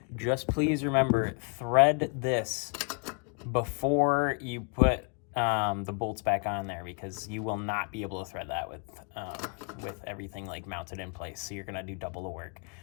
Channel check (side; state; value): right; quieter; 39.0 dB